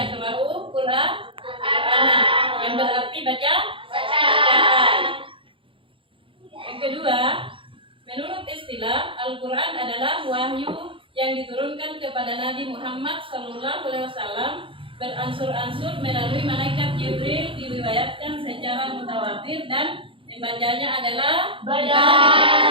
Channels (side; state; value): left; late; 0.25 ms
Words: Qur'an, yang berarti bacaan. Yang kedua, menurut istilah, Al-Quran adalah wahyu yang diturunkan kepada Nabi Muhammad SAW beransur-ansur melalui malaikat Jibril, diriwayatkan secara mutawatir dan membacanya adalah